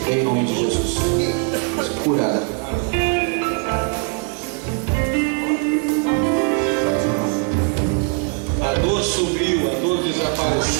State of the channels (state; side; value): quieter; left; 35.4 dB